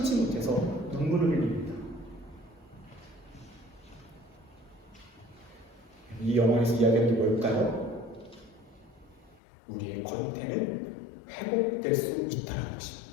못해서 눈물을 흘립니다. 이 영화에서 이야기하는 게 뭘까요? 우리의 권태는 회복될 수 있다는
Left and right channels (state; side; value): drops out; right; at 9.4 s